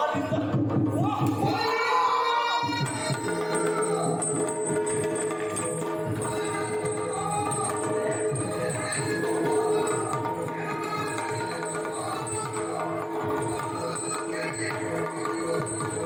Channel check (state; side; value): identical; both; correlation 1.00